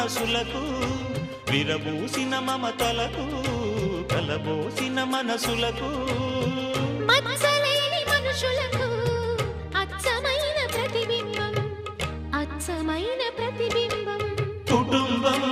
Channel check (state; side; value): identical; both; correlation 1.00